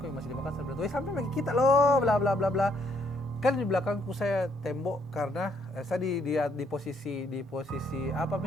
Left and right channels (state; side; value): normal; both; correlation 0.70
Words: yang masih di Makassar, bilang, sampai bagi kita loh, bla bla bla bla. Kan di belakangku saya tembok karena saya di posisi apa